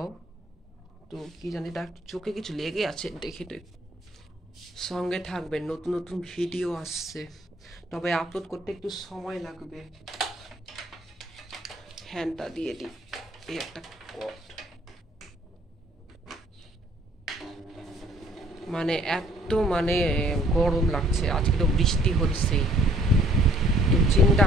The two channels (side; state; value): both; normal; correlation 0.59